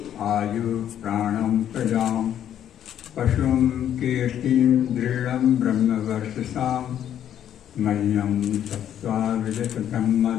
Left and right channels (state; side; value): quieter; right; 10.3 dB